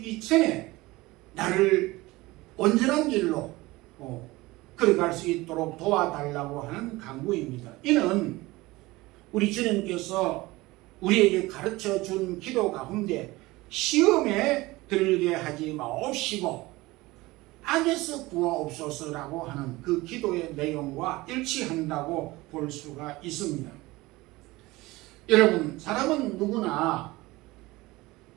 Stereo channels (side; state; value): left; quieter; 20.4 dB